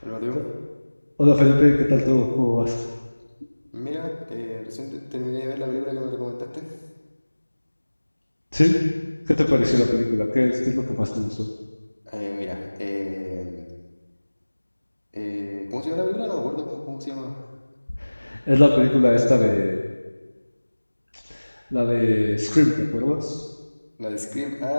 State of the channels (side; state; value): both; inverted; correlation -1.00